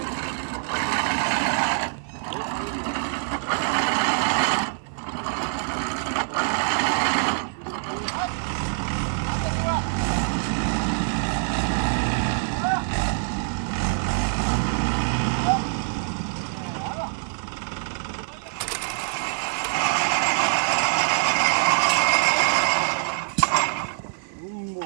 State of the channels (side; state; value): left; silent; 55 dB below the other